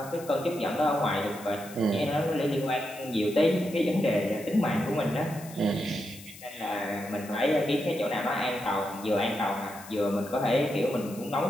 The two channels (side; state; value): left; noise; hiss, 17 dB below the sound